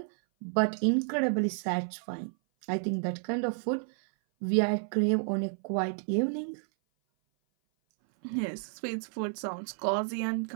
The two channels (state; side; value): silent; left; 56 dB below the other